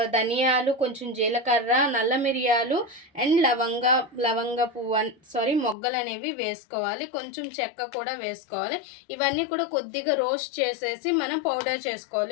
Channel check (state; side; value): drops out; right; at 5.8 s